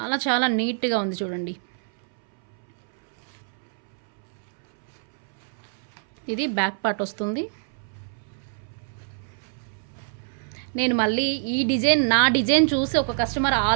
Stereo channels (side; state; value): left; silent; 61 dB below the other